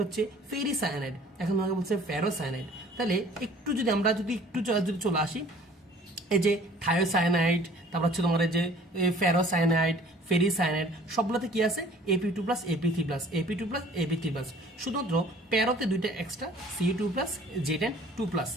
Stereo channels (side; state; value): both; normal; correlation 0.52